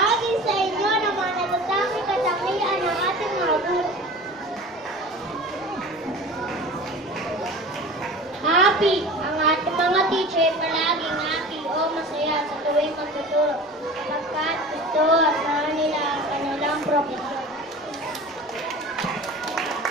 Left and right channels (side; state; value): both; normal; correlation 0.37